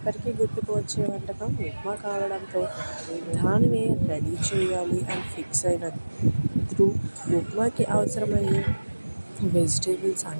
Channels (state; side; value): inverted; both; correlation -1.00